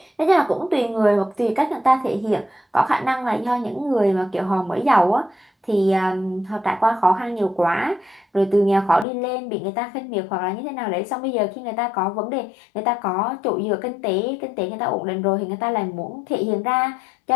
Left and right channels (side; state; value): right; drops out; at 9.1 s